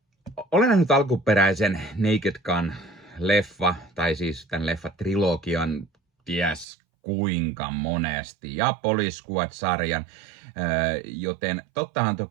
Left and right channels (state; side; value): drops out; left; at 6.7 s